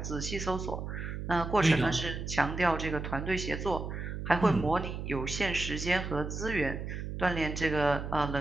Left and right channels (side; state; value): right; noise; hum, 6 dB below the sound